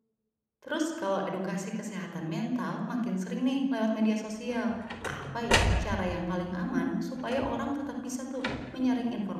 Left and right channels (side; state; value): both; identical; correlation 1.00